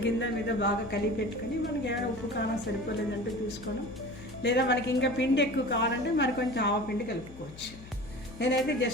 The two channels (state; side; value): noise; left; hum, 17 dB below the sound